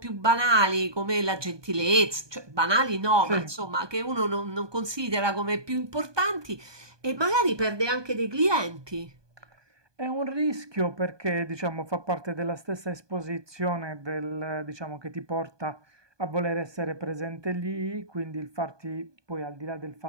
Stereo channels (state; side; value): late; left; 1.2 ms